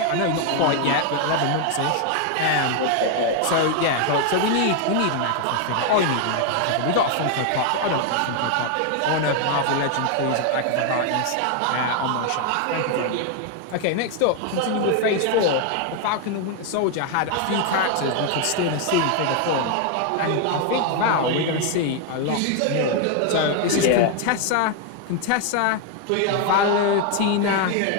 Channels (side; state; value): both; different; correlation 0.00